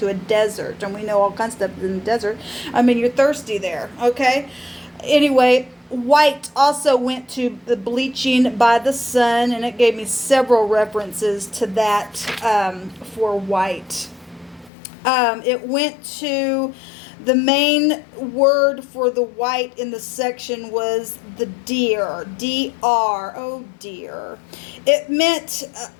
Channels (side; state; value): right; drops out; at 14.7 s